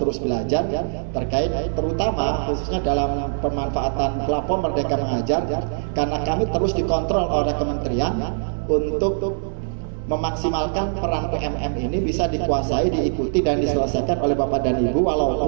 belajar terkait terutama khususnya dalam pemanfaatan platform Merdeka Mengajar, karena kami terus dikontrol oleh kementerian untuk memaksimalkan peran PMM ini bisa dikuasai, diikuti dan diselesaikan oleh Bapak dan Ibu,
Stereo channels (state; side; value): silent; left; digital silence